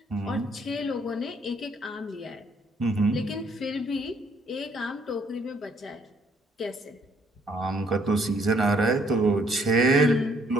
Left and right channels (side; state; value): both; normal; correlation 0.66